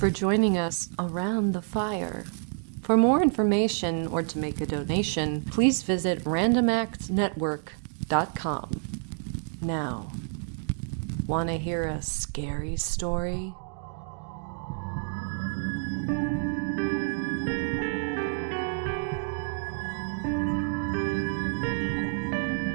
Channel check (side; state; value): left; silent; digital silence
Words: joining us around the fire. For more information or to make a donation, please visit randomactsnetwork.com. Now, want to hear a scary story?